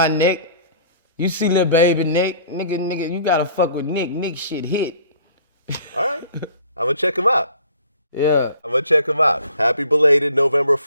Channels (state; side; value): inverted; both; correlation -0.52